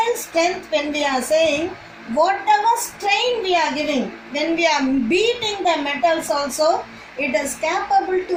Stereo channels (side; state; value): both; identical; correlation 1.00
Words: strength, when we are saying whatever strain we are giving, when we are beating the metals also, it is capable